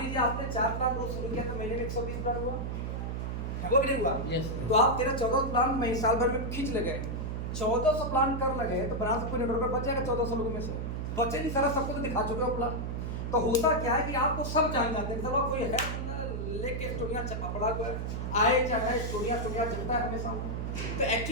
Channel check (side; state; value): right; noise; hum, 3 dB below the sound